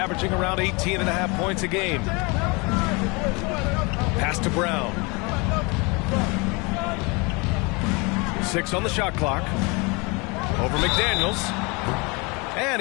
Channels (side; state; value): right; quieter; 28.4 dB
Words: around 18.5 points a game. Pass to Brown. 6 on the shot clock. Over McDaniels.